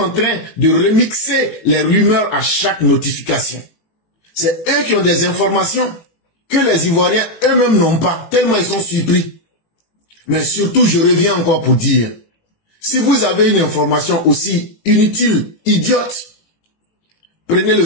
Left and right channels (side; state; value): right; late; 18 ms